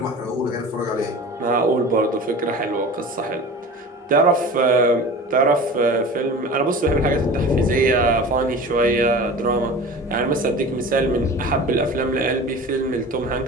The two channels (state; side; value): normal; both; correlation 0.36